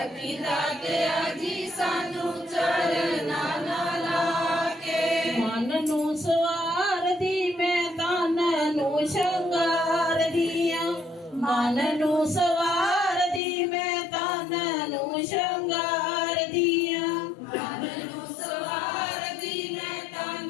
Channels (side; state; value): right; drops out; at 13.4 s